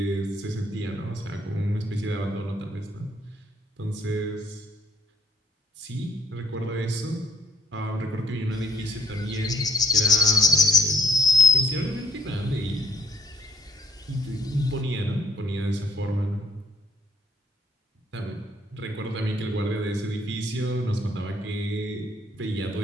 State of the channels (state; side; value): normal; both; correlation 0.63